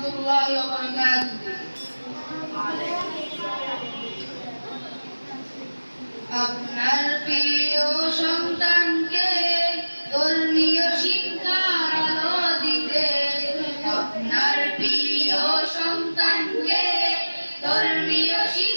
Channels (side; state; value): both; inverted; correlation -1.00